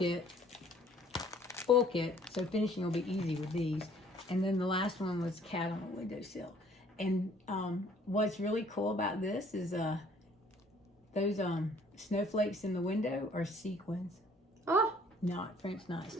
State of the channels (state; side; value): normal; both; correlation 0.58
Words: Full kit. So finishing will be easy with these. And then the last one was cat on a windowsill. And what's really cool about this is those snowflakes in the window are sequins. Oh, Not French